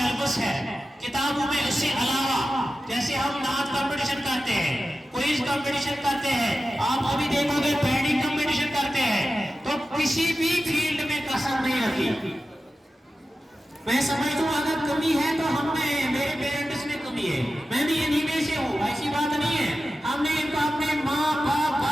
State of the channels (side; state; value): both; normal; correlation 0.93